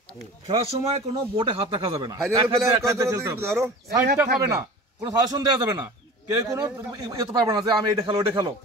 খেলার সময় কোনো বোর্ডে হাত রাখা যাবে না, সাইডটা হবে না, কোনো সাজেশন দেওয়া যাবে না, কেউ কোনো ইয়ে পারবে না যে আমি এটা খেলো ওটা খেলো,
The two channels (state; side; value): normal; both; correlation 0.38